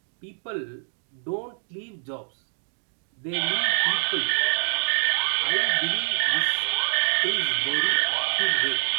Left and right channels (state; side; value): silent; left; digital silence